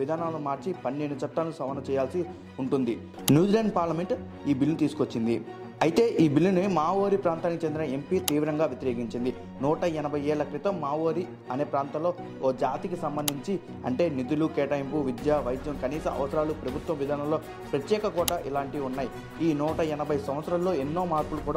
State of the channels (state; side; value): identical; both; correlation 1.00